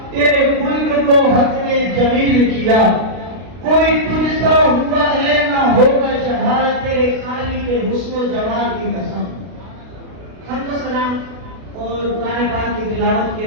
تیرے خلق کو حق نے جمیل کیا. کوئی تجھ سا ہوا ہے نہ ہوگا چڑھا، تیرے خالی کے حسن و جمال کی قسم. حمد و سلام اور قرآن پاک کی تلاوت کے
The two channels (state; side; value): late; left; 33 ms